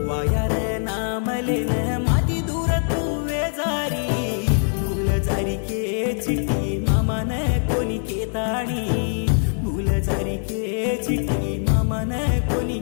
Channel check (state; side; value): silent; right; digital silence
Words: वाया रे नामले न माती दूर तू वेजारी भूलजारी के चिट्टी मामा न कोणी केताणी भूलजारी के चिट्टी मामा न कोणी